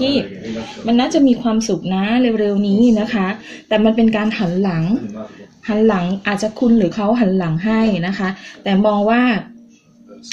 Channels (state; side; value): identical; both; correlation 1.00